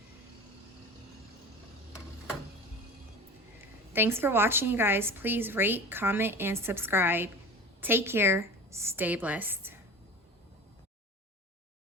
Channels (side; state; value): both; normal; correlation 0.34